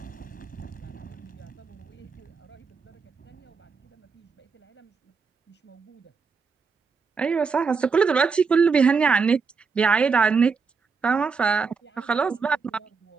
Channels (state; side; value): quieter; left; 5.1 dB